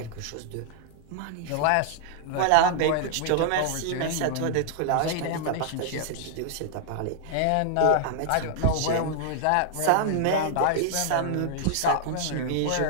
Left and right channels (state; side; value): different; both; correlation -0.01